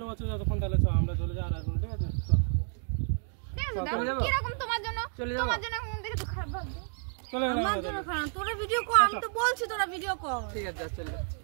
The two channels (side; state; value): left; silent; 57 dB below the other